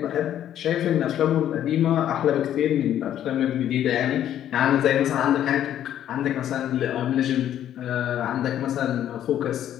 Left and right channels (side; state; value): right; quieter; 11.0 dB